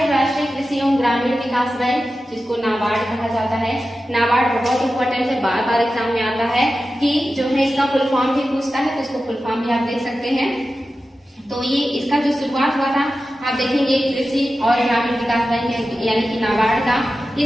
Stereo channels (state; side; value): normal; both; correlation 0.93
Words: राष्ट्रीय कृषि एवं ग्रामीण विकास बैंक, जिसको नाबार्ड कहा जाता है। नाबार्ड बहुत इंपॉर्टेंट है, बार बार एग्जाम में आता है कि जो है इसका फुल फॉर्म भी पूछता है, तो इसको फुल फॉर्म भी आप देख सकते हैं। तो ये इसका जो शुरुआत हुआ था आप देखेंगे कृषि और ग्रामीण विकास बैंक यानी कि नाबार्ड का,